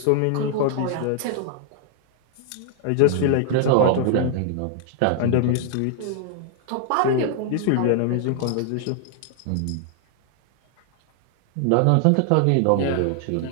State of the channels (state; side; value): different; both; correlation 0.00